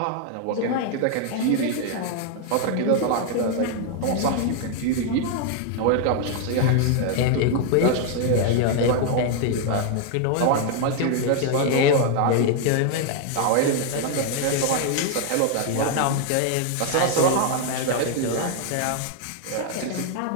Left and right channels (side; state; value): both; different; correlation 0.00